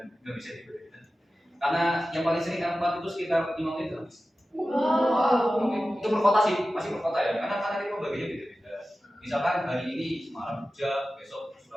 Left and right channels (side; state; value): both; normal; correlation 0.94